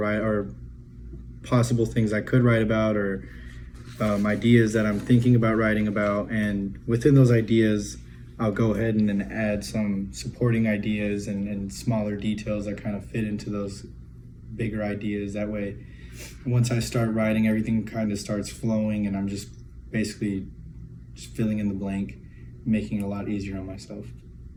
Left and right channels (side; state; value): both; identical; correlation 1.00